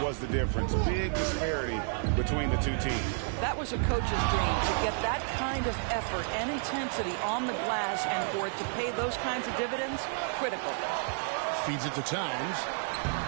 was the difference. Big disparity between the two teams. That was a coach's dream, to get that kind of effort and intensity on the glass, and for it to pay those kinds of dividends, critical. Feeds it to Towns.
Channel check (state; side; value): silent; left; 57 dB below the other